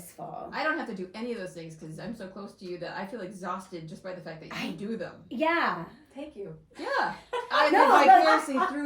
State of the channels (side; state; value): both; identical; correlation 1.00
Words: I don't have to do any of those things because I'm so close to you that I feel exhausted just by the fact that you do them. Yeah. Thank you. Yeah. I No, live vicariously